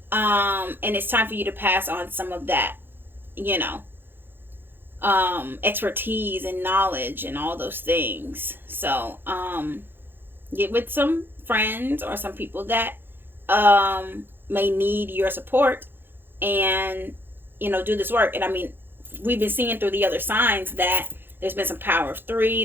and it's time for you to pass on some of that, expertise and knowledge and all those things. So get with some friends or some people that may need your support, and do this work. And I mean, we've been seeing through the other signs that there's been some power of 3.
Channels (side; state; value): left; late; 0.10 ms